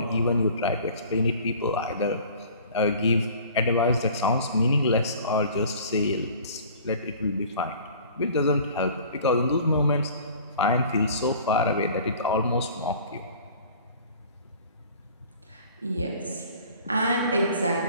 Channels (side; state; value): both; inverted; correlation -0.47